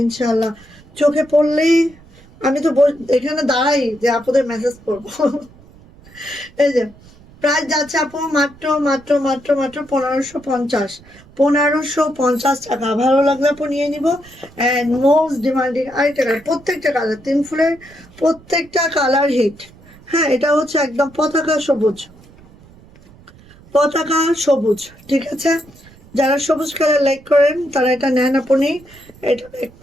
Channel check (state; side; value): noise; right; rumble, 24 dB below the sound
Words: ইনশাল্লাহ। চোখে পড়লেই আমি তো এখানে দাঁড়াই যে আপুদের মেসেজ করবো। এই যে প্রাইস যাচ্ছে আপু মাত্র 1550 টাকা। ভালো লাগলে আপু নিয়ে নিব। অ্যান্ড মোস্ট ডিমান্ডিং আরেকটা কালার, প্রত্যেকটা কালার 3 ফুলের প্রত্যেকটা কালার হিট, হ্যাঁ। এটা হচ্ছে একদম পতাকা সবুজ, ঠিক আছে। যারা সবুজ কালার লাইক করেন তারা এটা নেন আপনি।